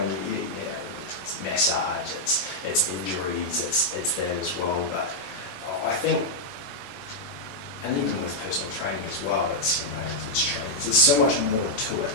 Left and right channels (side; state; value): right; late; 21 ms